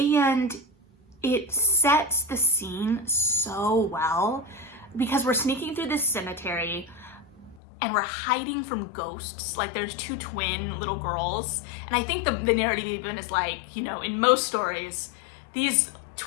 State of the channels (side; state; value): right; drops out; at 7.6 s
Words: it sets the scene so well because we're sneaking through this cemetery and we're hiding from ghosts. Like, there's two twin little girls, and I think the narrative even is like, in most stories, these